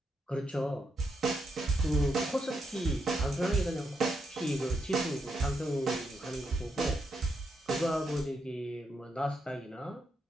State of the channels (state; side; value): normal; both; correlation 0.81